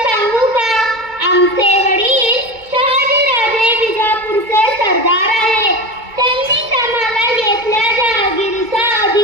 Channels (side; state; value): left; late; 2.2 ms